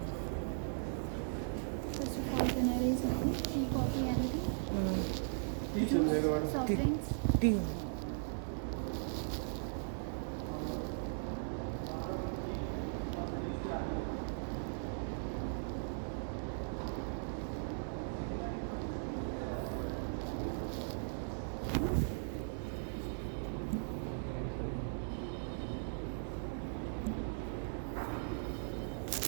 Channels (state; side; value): silent; left; digital silence